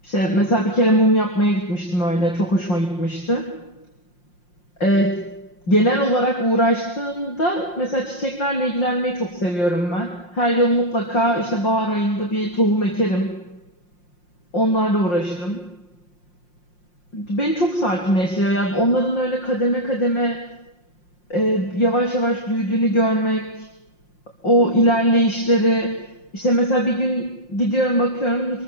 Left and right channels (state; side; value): late; right; 5.6 ms